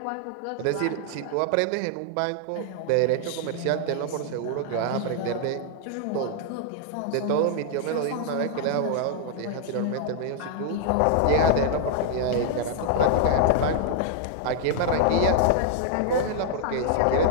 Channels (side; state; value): both; different; correlation -0.01